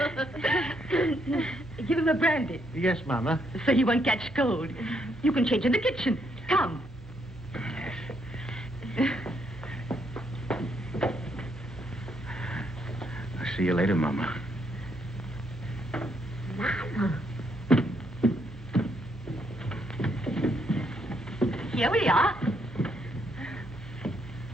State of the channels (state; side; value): noise; right; hum, 19 dB below the sound